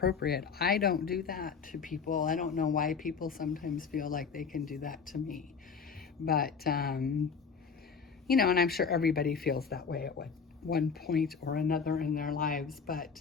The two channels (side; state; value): right; quieter; 5.8 dB